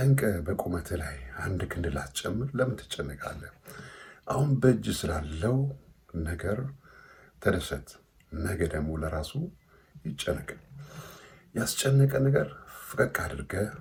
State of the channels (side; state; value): both; identical; correlation 1.00